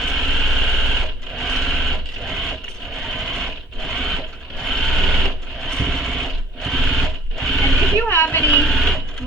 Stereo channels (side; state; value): both; normal; correlation 0.57